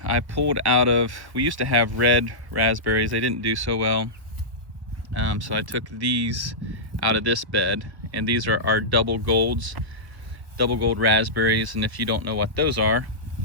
I pulled out of, we used to have red raspberries. They didn't do so well. So I took these out of this bed, and these are our double gold raspberries. And if you don't know what those are,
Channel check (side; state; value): left; late; 1.4 ms